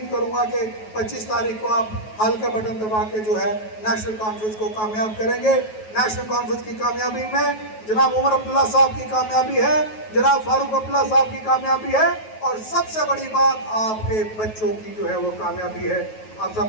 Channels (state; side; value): late; right; 9.3 ms